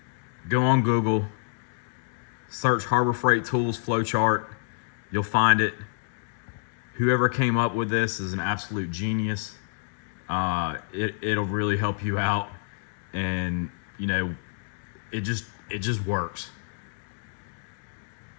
go on Google, search Harbor Freight tools flowchart. You'll find it. Whoever came up with this is an absolute genius. It'll really help you out, and it just works.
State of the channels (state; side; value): silent; right; digital silence